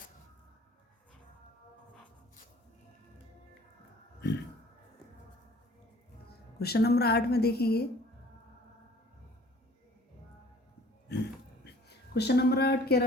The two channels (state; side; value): normal; both; correlation 0.52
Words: Question number 8 में देखेंगे, क्वेश्चन नंबर 8 कह